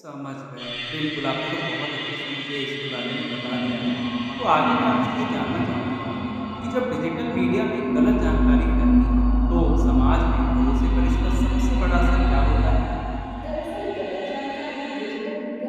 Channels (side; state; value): both; identical; correlation 1.00